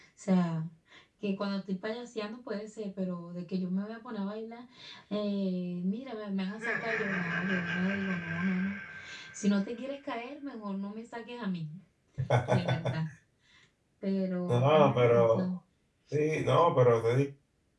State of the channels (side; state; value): both; identical; correlation 1.00